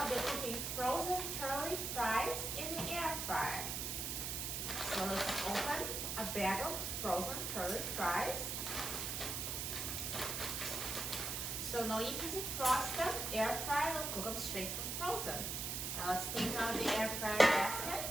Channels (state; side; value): noise; right; hiss, 2 dB below the sound